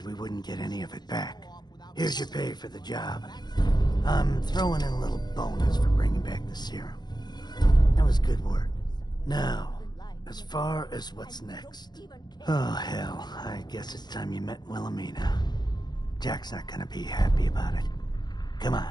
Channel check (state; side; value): late; right; 0.20 ms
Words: we wouldn't get any of it back. Here's your pay for the job. I'm throwing in a little bonus for bringing back the serum. That was good work. Now, as far as what's next. Oh, hell. I guess it's time you met Wilhelmina. Jack's not gonna be happy about it. Come